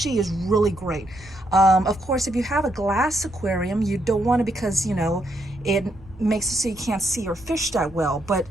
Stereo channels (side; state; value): right; noise; rumble, 21 dB below the sound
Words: is really great. Of course, if you have a glass aquarium, you don't want to, because you know it makes it so you can't see your fish that well. But